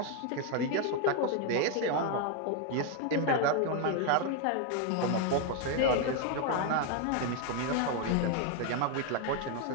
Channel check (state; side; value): different; both; correlation 0.01